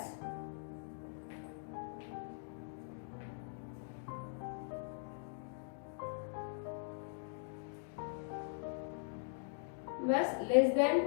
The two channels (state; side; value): silent; right; digital silence